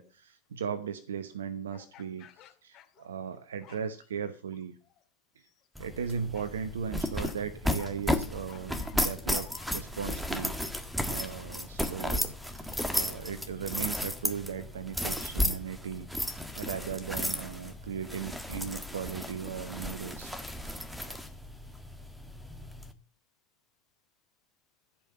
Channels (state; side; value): normal; both; correlation 0.37